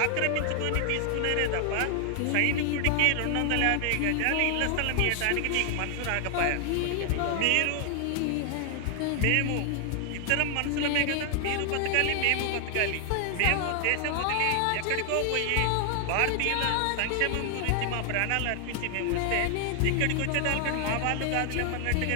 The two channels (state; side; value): different; both; correlation 0.00